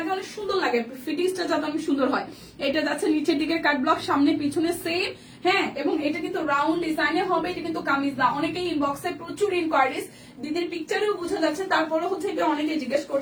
অনেক সুন্দর লাগে, ফিটিংসটা যাতে অনেক সুন্দর হয়। এটা যাচ্ছে নিচের দিকের কাট ব্লক, সামনে পিছনে সেম, হ্যাঁ। এবং এটা কিন্তু রাউন্ড ডিজাইনে হবে, এটা কিন্তু কামিজ না। অনেকেই ইনবক্সে প্রচুর ইনকোয়ারিজ, দিদির পিকচারেও বোঝা যাচ্ছে, তারপরে হচ্ছে এটা অনেকে জিজ্ঞেস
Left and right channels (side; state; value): both; identical; correlation 1.00